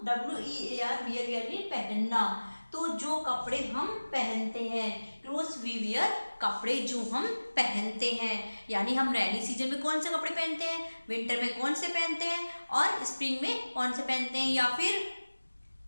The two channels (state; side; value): inverted; both; correlation -1.00